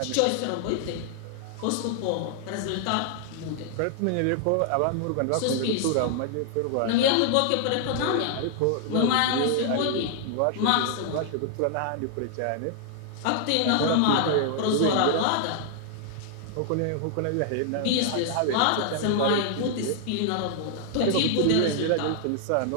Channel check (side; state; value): both; different; correlation 0.00